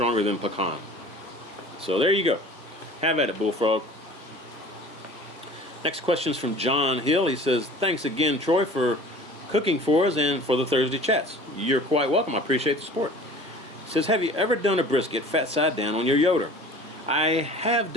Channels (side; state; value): both; normal; correlation 0.44